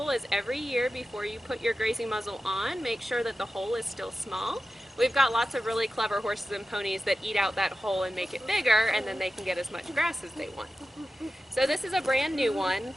is every year before you put your grazing muzzle on, make sure that the hole is still small. We've got lots of really clever horses and ponies that eat out that hole and make it bigger, and then they can get as much grass as they want. So this is a brand new one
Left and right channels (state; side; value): normal; both; correlation 0.93